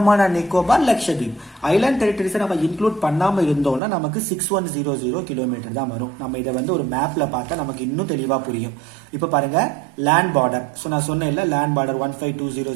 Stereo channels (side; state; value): left; drops out; at 3.8 s